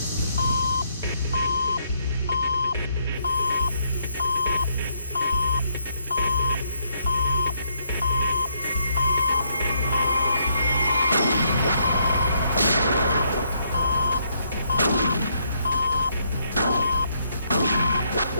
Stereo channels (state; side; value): inverted; both; correlation -0.74